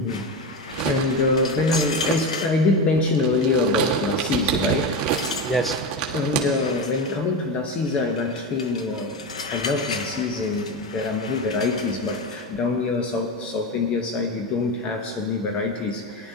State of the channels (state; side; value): normal; both; correlation 0.18